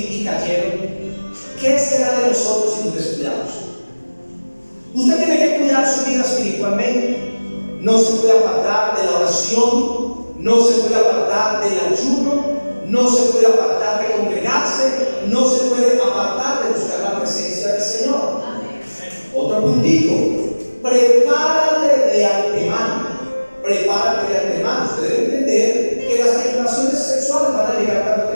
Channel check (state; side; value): inverted; both; correlation -1.00